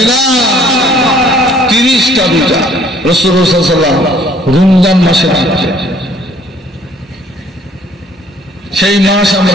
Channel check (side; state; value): both; normal; correlation 0.59